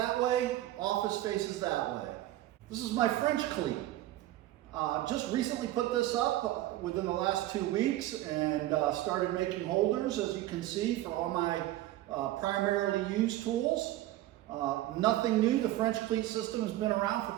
way, office faces that way. This is my French cleat. Just recently put this up within the last 2 weeks and started making holders, as you can see, for all my primarily used tools. Nothing new. The French cleat system has been around for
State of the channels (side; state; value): left; quieter; 15.3 dB